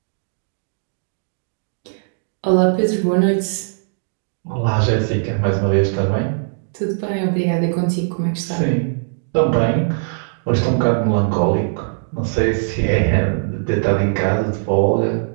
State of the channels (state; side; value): silent; left; digital silence